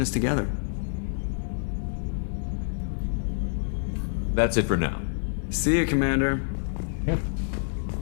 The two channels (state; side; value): silent; right; 60 dB below the other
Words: us together. That's it for now. See you, Commander.